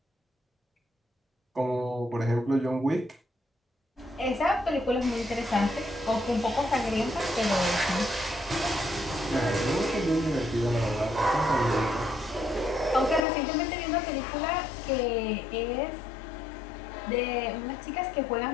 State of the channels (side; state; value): right; drops out; at 13.2 s